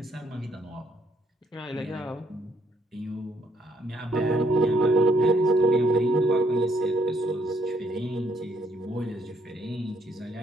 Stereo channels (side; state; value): both; normal; correlation 0.70